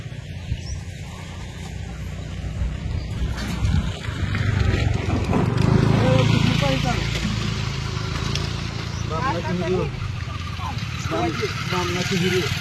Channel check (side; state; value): both; identical; correlation 1.00